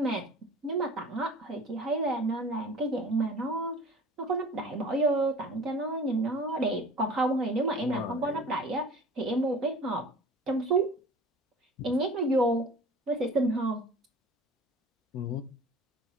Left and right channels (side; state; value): both; normal; correlation 0.42